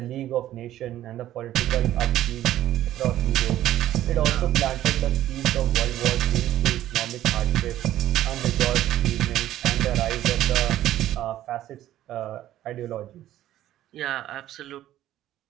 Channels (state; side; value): quieter; left; 13.2 dB